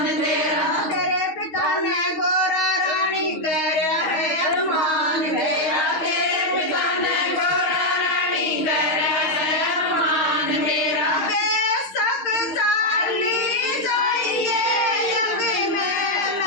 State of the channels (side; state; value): right; late; 6.4 ms